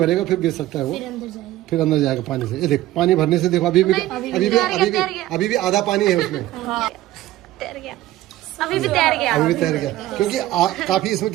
फिर गिर सकता है वो, फिर अंदर जाएगा पानी से। ये देख, पानी भरने से देखो अभी भी आधा पानी है उसमें। तैर गया, अभी भी तैर गया, क्योंकि काफी इसमें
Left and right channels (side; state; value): left; quieter; 15.4 dB